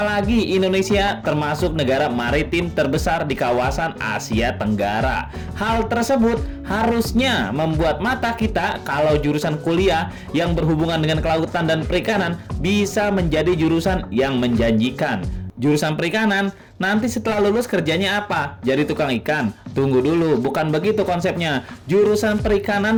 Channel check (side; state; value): both; identical; correlation 1.00